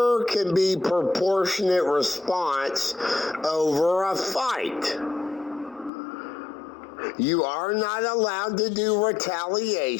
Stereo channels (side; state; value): right; drops out; at 5.9 s